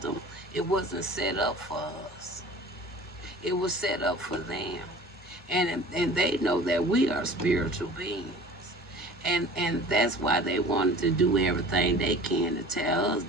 it wasn't set up for us. It was set up for them. And they know that we are spiritual beings. And that's why they wanted to do everything they can to tear us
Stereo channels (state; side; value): normal; both; correlation 0.43